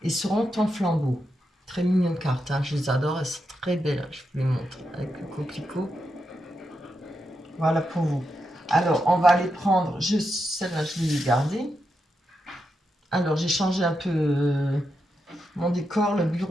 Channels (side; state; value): both; normal; correlation 0.85